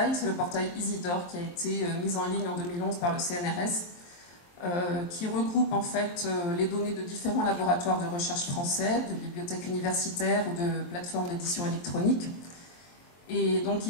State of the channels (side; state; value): right; late; 23 ms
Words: c'est le portail Isidore qui a été mis en ligne en 2011 par le CNRS, qui regroupe en fait les données de différents laboratoires de recherche français, de bibliothèques universitaires ou de plateformes d'édition électronique. Et donc